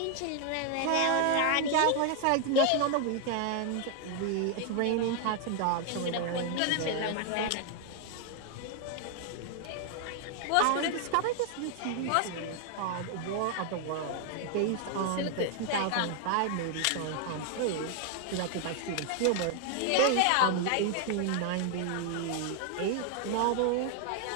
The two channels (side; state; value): both; different; correlation 0.00